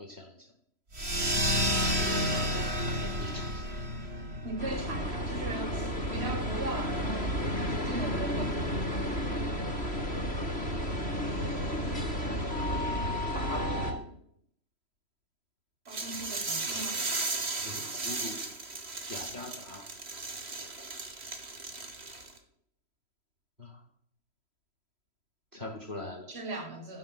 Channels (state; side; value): late; left; 3.0 ms